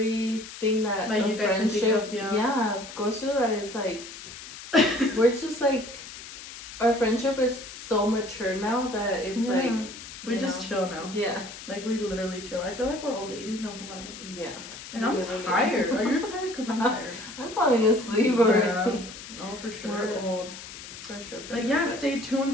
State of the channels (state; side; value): noise; left; hiss, 13 dB below the sound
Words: that like a you guys can think friendship of, yeah, goes through. That it's like we're just like, our friendship is so mature now that it's like we just chill now. Yeah, like we literally chill. I feel like we're old ladies now, Comadre. Yeah. Like, I'm tired. Are you tired? Cause I'm tired. I'm falling asleep already. Yeah. No, for sure. We're old. For sure. But yeah, stay